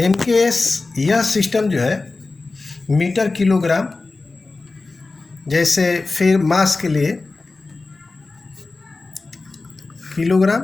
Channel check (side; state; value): right; quieter; 3.6 dB